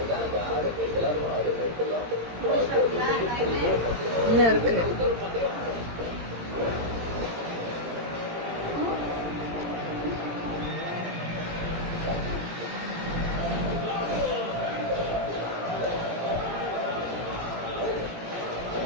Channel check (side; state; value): left; late; 17 ms